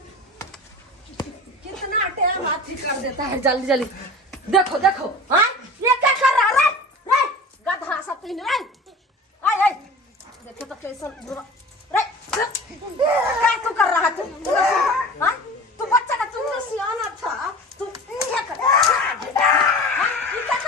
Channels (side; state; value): both; normal; correlation 0.37